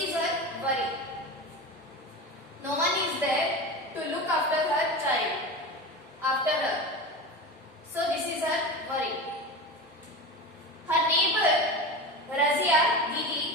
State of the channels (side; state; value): both; normal; correlation 0.27